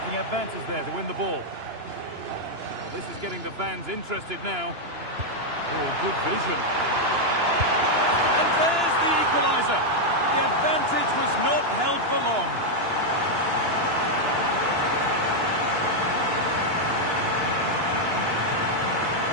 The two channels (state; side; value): late; left; 2.9 ms